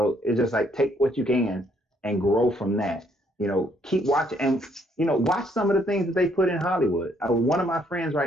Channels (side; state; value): both; normal; correlation 0.68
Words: it's just like, take what you can and grow from that. Keep watching and watch some of the things that they put in Hollywood. One of my friends